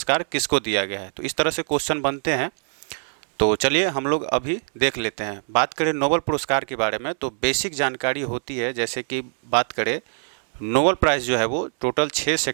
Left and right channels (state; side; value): silent; left; digital silence